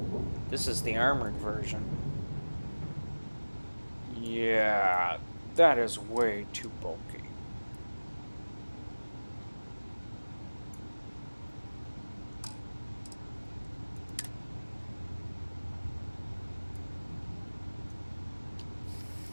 This is the armored version. Yeah, that is way too bulky.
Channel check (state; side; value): inverted; both; correlation -1.00